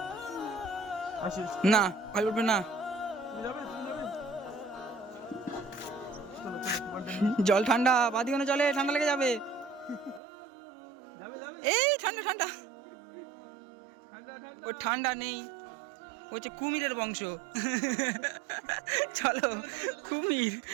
আসিস, না ভাই উঠবে না, তুমি যাবে, তুমি যাবে। চলো চলো, তোমারটা নিয়ে জল ঠান্ডা, বাদিওনে জলে ঠান্ডা লেগে যাবে। যাবে যাবে। এই ঠান্ডা ঠান্ডা, ঠান্ডা ঠান্ডা। ও ঠান্ডা নেই, ও হচ্ছে কুমিরের বংশ। চলো কুমির,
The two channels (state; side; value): drops out; left; at 10.2 s